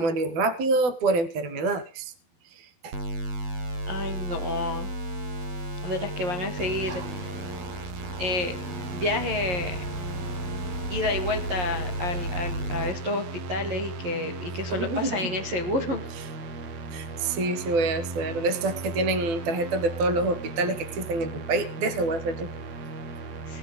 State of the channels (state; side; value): late; left; 12 ms